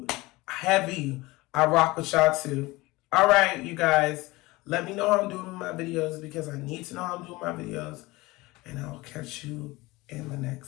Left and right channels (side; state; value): right; quieter; 21.3 dB